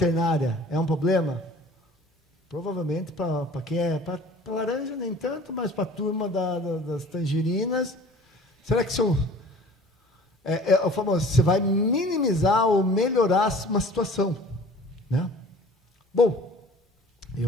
é um problema? Provavelmente para quem é... Para laranja nem tanto, mas para a turma das tangerinas, será que o famoso, você vai minimizar ou melhorar uma situação, né? Bom,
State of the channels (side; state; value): both; normal; correlation 0.47